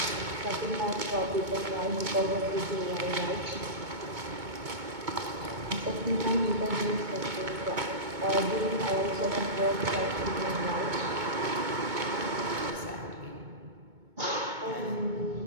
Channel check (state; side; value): late; left; 2.2 ms